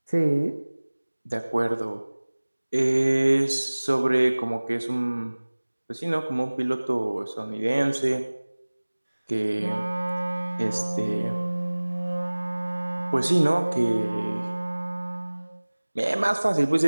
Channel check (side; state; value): both; inverted; correlation -1.00